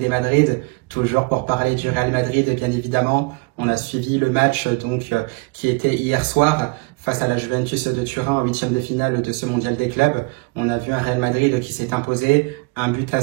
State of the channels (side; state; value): left; quieter; 27.4 dB